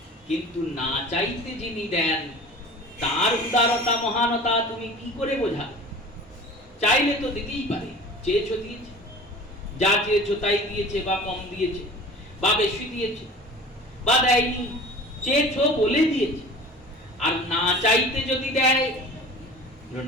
কিন্তু না চাইতে যিনি দেন তার উদারতা মহানতা তুমি কি করে বোঝাবে? চাইলে তো দিতেই পারে, চেয়েছো দিয়েছে, যা চেয়েছো তাই দিয়েছে, বা কম দিয়েছে, বা বেশি দিয়েছে, বা দেয়নি, চেয়েছো বলে দিয়েছে। আর না চাইতে যদি দেয়,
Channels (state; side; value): normal; both; correlation 0.40